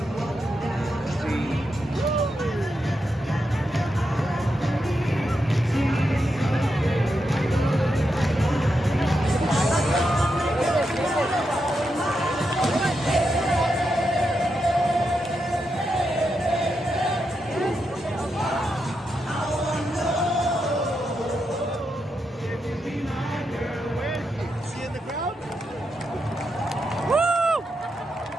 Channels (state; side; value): normal; both; correlation 0.85